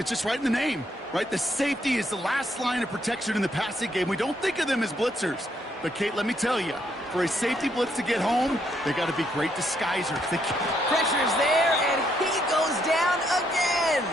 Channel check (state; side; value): normal; both; correlation 0.74